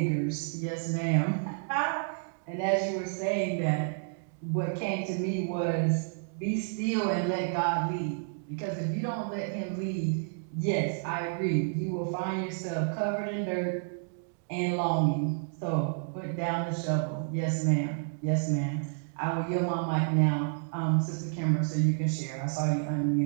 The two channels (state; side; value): silent; left; digital silence